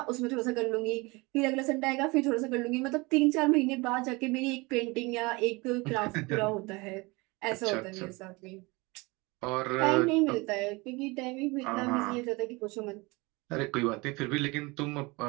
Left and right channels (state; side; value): quieter; left; 25.1 dB